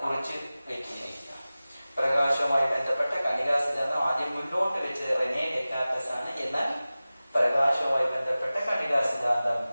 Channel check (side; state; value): both; inverted; correlation -0.97